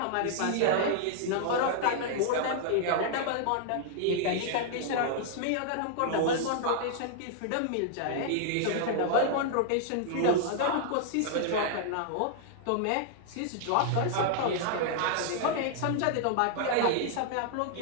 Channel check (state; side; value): different; both; correlation -0.01